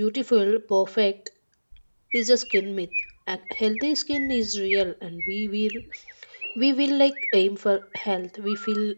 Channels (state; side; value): inverted; both; correlation -1.00